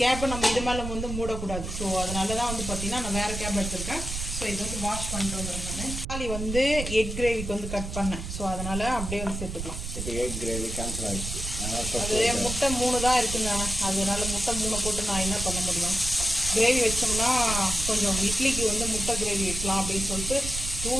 நம்ம இது மேலே வந்து மூடக்கூடாது. ஸோ அதனால தான் வந்து பார்த்தீங்கன்னா நான் வேறு கேப் எடுத்திருக்கேன். ஸோ இது வந்து வாஷ் பண்ணிட்டு வந்துடுறேன். நான் தக்காளி வந்து எக் கிரேவிக்கு வந்து கட் பண்ணேன். ஸோ அதனால் அப்படியே வந்து சேர்த்துக்கலாம். இப்போ எக் கிரேவி கேன்சல் ஆகிடுச்சு. அது முட்டை 3 தான் இருக்குங்க. அதனால முட்டை 3 போட்டு நான் என்ன பண்ண முடியும்? கிரேவி வச்சோம்னா கொஞ்சம் இட்லிக்கு வந்து முட்டை கிரேவி வைக்கலாம் அப்படின்னு சொல்லிட்டு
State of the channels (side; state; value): right; noise; rumble, 6 dB below the sound